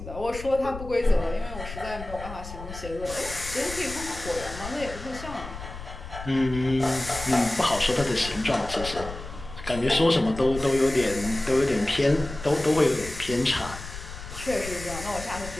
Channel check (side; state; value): left; noise; rumble, 12 dB below the sound